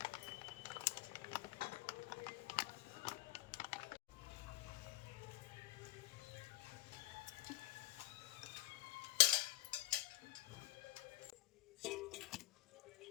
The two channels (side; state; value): right; quieter; 17.0 dB